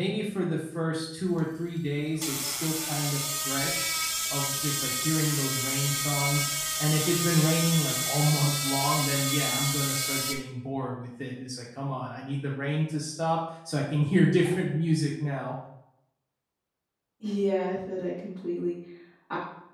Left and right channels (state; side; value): identical; both; correlation 1.00